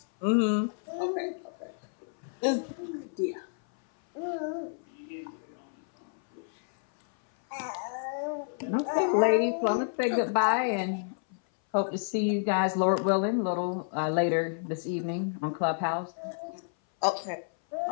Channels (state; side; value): silent; right; 57 dB below the other